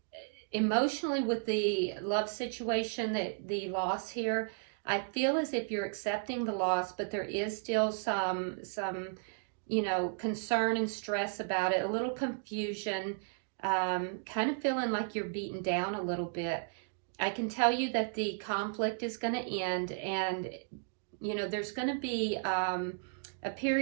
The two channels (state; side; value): silent; left; digital silence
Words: emotionally, with the love situation, the loss here, I feel as if you're accepting the loss, but there is still some you know, concern and stress about it, a little confusion, kind of feeling like you're beaten down a little bit. I can tell you that the conflict is going to end, and, you know, there's going to be a